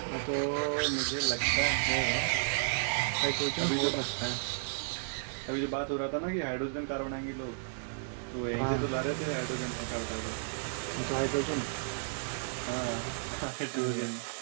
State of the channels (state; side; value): silent; left; 56 dB below the other